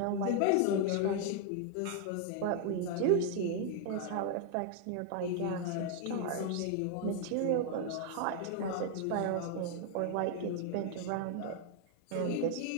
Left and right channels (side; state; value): both; different; correlation 0.00